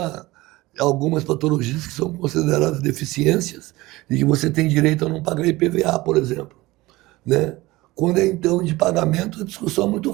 algumas patologias que são consideradas deficiências e que você tem direito a não pagar IPVA, por exemplo, né? Quando é então de pagamento, a discussão é muito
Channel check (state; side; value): quieter; left; 19.7 dB